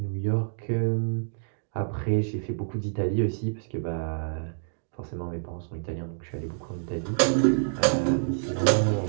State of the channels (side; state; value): left; silent; digital silence